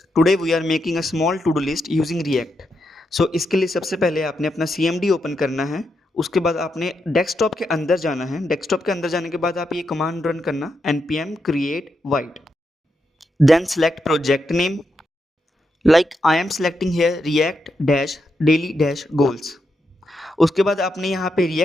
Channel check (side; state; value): both; normal; correlation 0.84